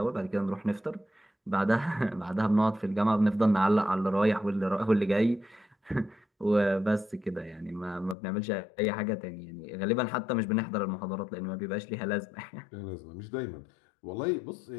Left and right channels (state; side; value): drops out; right; at 8.2 s